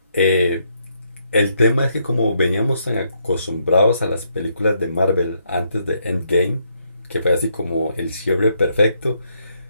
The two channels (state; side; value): inverted; both; correlation -0.75